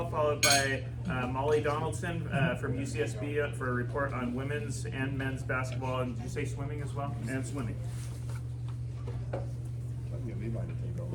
followed by Molly Donaldson from UCSB for a report on women's and men's basketball. And did you say swimming as well? And swimming. I'll get Levi to take over.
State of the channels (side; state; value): both; identical; correlation 1.00